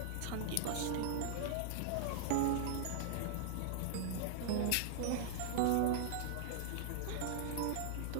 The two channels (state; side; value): different; both; correlation -0.01